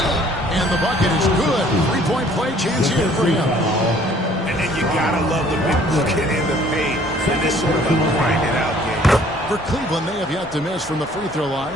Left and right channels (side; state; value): both; normal; correlation 0.57